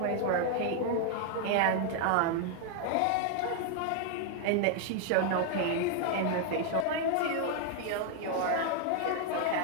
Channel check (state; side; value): different; both; correlation 0.00